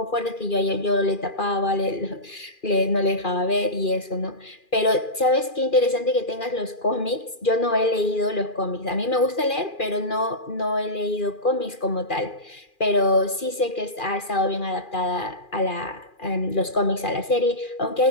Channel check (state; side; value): late; right; 2.4 ms